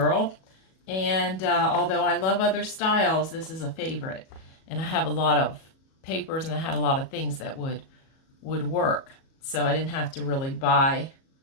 And although I love other styles, this is a favorite. And I have a lot of papers, and I had a lot of things that would work. So I didn't have to really buy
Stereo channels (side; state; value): right; late; 37 ms